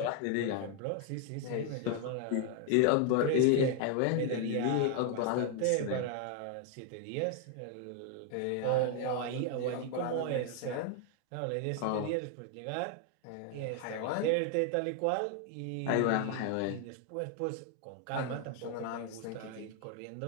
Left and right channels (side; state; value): both; different; correlation 0.00